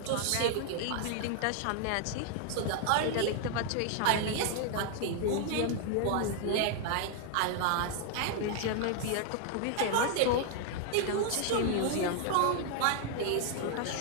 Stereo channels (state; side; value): different; both; correlation 0.00